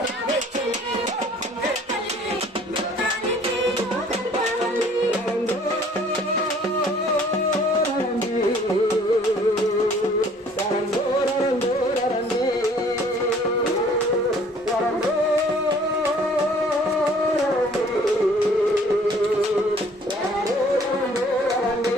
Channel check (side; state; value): both; normal; correlation 0.56